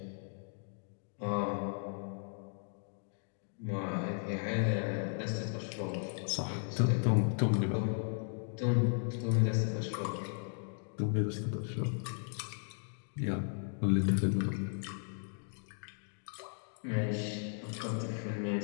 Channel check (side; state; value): right; silent; 54 dB below the other